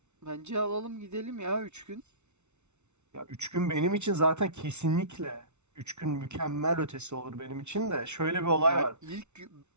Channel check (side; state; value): left; late; 0.82 ms